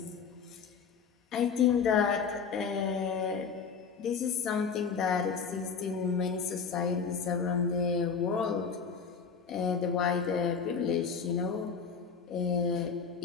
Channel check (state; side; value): quieter; right; 6.0 dB